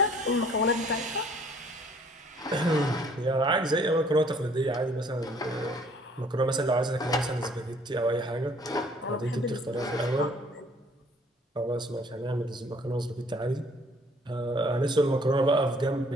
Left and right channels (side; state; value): both; normal; correlation 0.58